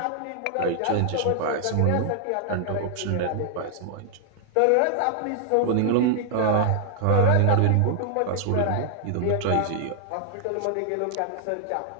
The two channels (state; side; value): different; both; correlation 0.00